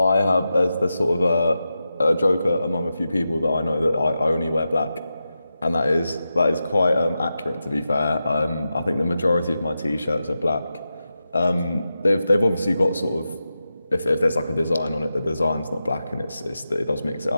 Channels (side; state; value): both; inverted; correlation -0.90